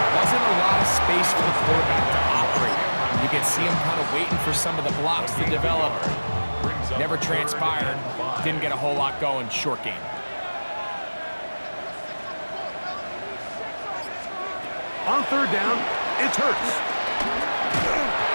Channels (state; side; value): inverted; both; correlation -1.00